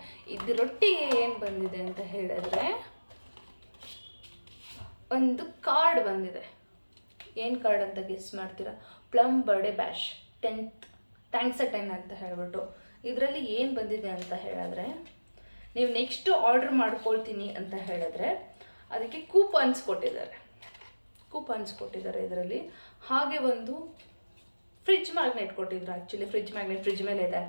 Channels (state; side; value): inverted; both; correlation -1.00